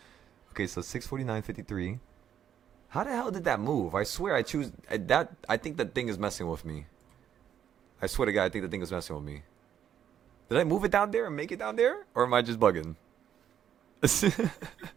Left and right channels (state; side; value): quieter; left; 9.5 dB